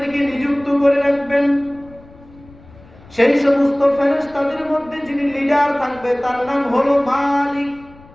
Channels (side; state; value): left; noise; rumble, 24 dB below the sound